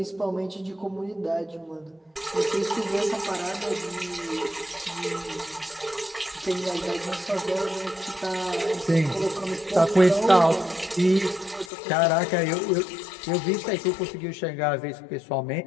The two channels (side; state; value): right; drops out; at 11.7 s